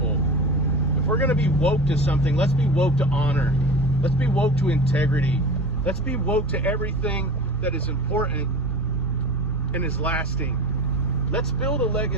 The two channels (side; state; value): both; normal; correlation 0.33